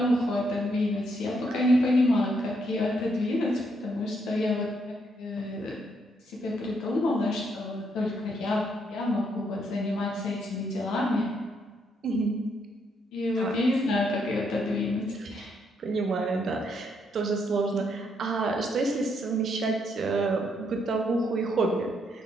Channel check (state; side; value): normal; both; correlation 0.75